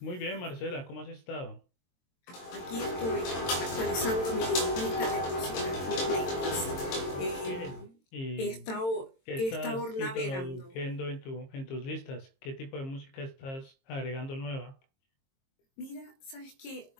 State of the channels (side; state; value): right; late; 22 ms